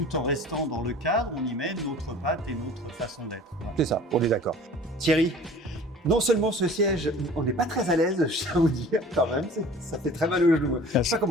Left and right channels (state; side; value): normal; both; correlation 0.45